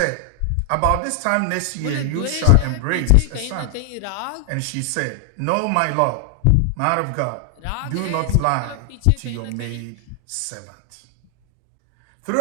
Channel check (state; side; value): different; both; correlation 0.00